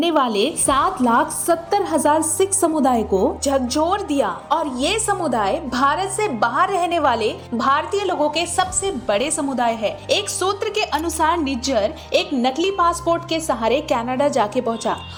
वाले 7,70,000 सिख समुदाय को झकझोर दिया और ये समुदाय भारत से बाहर रहने वाले भारतीय लोगों के सबसे बड़े समुदाय है। एक सूत्र के अनुसार निज्जर एक नकली पासपोर्ट के सहारे कनाडा जाके पहुंचा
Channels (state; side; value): identical; both; correlation 1.00